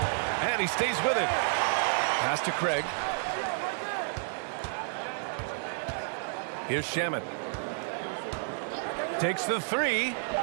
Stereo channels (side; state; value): left; silent; digital silence